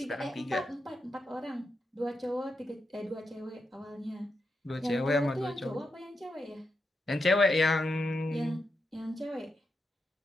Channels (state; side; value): normal; both; correlation 0.85